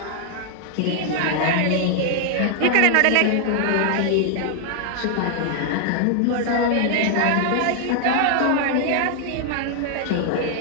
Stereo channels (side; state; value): both; different; correlation 0.00